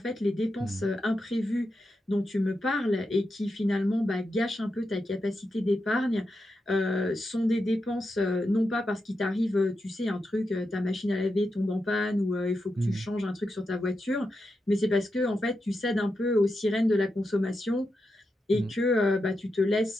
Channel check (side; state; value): both; normal; correlation 0.87